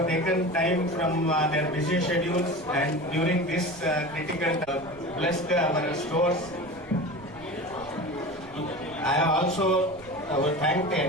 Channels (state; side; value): noise; right; rumble, 23 dB below the sound